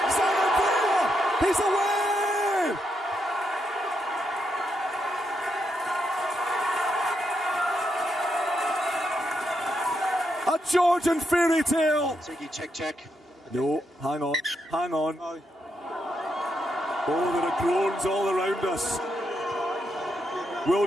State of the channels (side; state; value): both; normal; correlation 0.81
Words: Zanandrea He's away! A Georgian fairy tale. Check. No, hang on. Oh, there are groans all around us.